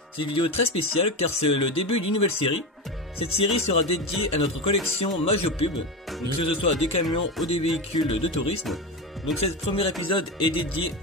C'est une vidéo très spéciale car c'est le début d'une nouvelle série. Cette série sera dédiée à notre collection Majopub, donc que ce soit des camions ou des véhicules de tourisme. Donc ce premier épisode est dédié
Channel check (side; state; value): both; normal; correlation 0.20